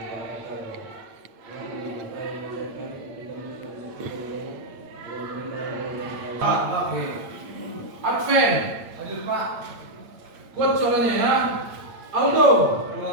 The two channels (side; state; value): left; late; 8.8 ms